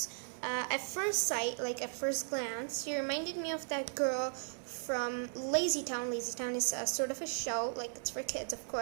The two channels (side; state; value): left; silent; 53 dB below the other